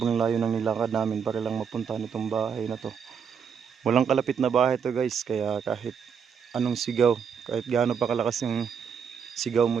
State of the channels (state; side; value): quieter; left; 7.0 dB